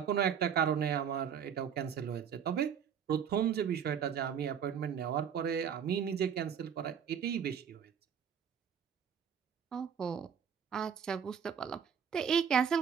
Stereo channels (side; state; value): left; quieter; 7.8 dB